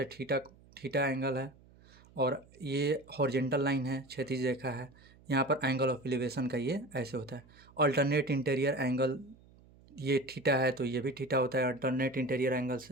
थीटा एंगल है और ये हॉरिजेंटल लाइन है, क्षैतिज रेखा है। यहाँ पर एंगल ऑफ एलिवेशन का ये ऐसे होता है। अल्टरनेट इंटीरियर एंगल, ये थीटा है तो ये भी थीटा होता है अल्टरनेट इंटीरियर एंगल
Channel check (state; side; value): noise; right; hum, 26 dB below the sound